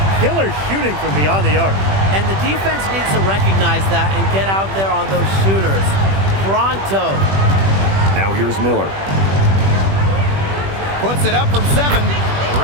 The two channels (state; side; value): late; left; 21 ms